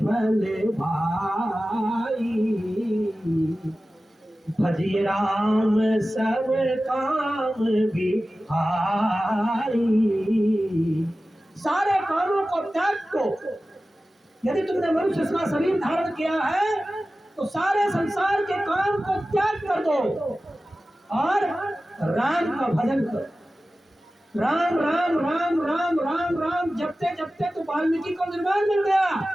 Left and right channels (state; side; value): normal; both; correlation 0.95